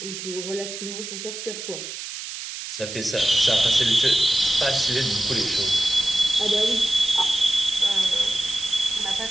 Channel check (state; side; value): noise; right; hiss, 8 dB below the sound